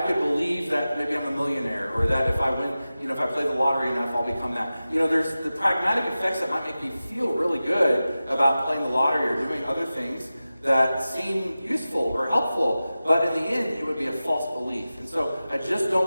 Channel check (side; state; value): both; inverted; correlation -0.95